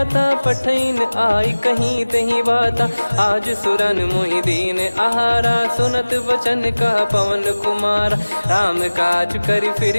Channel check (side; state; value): both; inverted; correlation -1.00